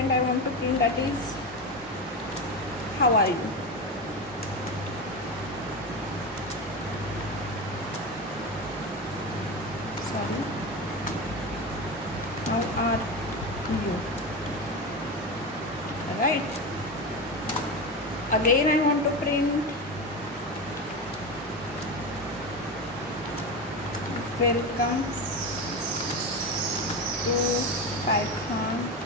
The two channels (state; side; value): normal; both; correlation 0.20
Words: I want to print that is how are you. Sorry, how are you, right. Again I want to print welcome to Python